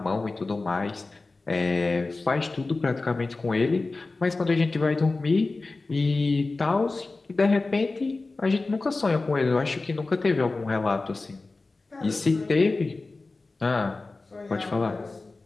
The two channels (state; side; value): quieter; right; 3.5 dB